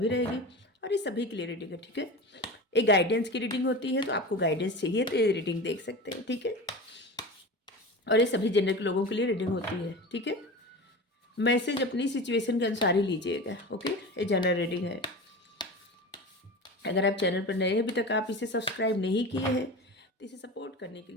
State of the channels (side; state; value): both; normal; correlation 0.30